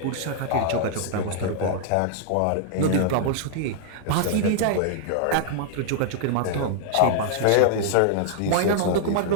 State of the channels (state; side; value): different; both; correlation -0.01